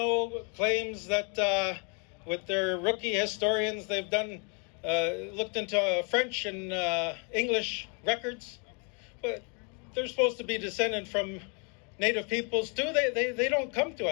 claims that with their rookie historians, they've done looked into French and English records, but they're supposed to be descended from Native peoples too. They don't come to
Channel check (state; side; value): quieter; right; 36.3 dB